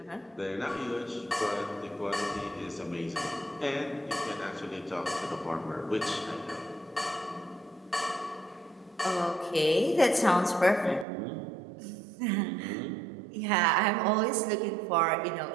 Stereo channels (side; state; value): left; drops out; at 11.1 s